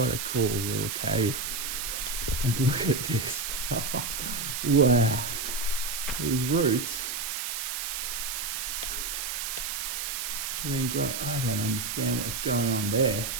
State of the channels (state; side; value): noise; right; hiss, 3 dB below the sound